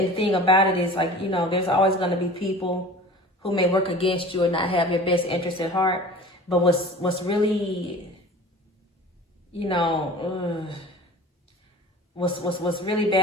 thing about it is, like, you know, there's always going to be people who may work against you or not have your best interest at heart. But what's really, you know, what's really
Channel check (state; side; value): normal; both; correlation 0.40